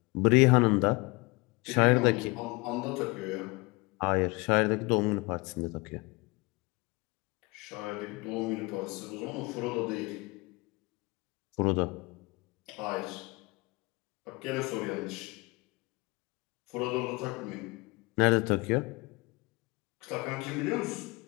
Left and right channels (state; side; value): quieter; right; 25.5 dB